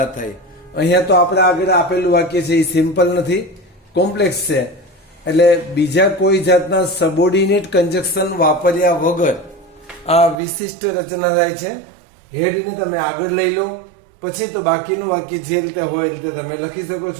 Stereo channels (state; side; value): drops out; left; at 10.4 s